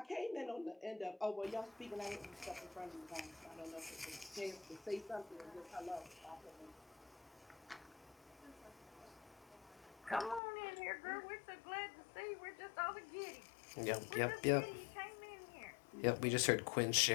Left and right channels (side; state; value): right; drops out; at 10.4 s